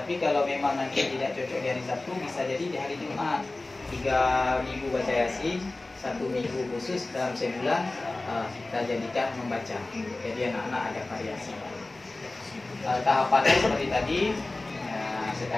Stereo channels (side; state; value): right; quieter; 3.0 dB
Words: kalau memang nanti tidak cocok di hari Sabtu, bisa jadi di hari Jumat. 3 minggu baca Yasin, 1 minggu khusus dalam sebulan kita jadikan membaca. Jadi anak-anak ada variasi. Tahapannya seperti tadi,